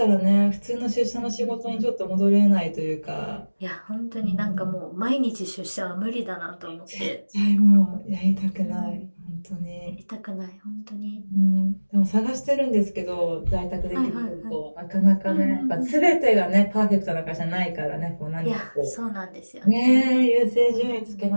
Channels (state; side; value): inverted; both; correlation -1.00